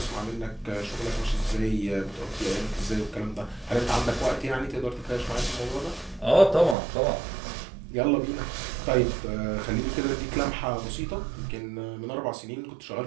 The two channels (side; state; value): left; drops out; at 6.8 s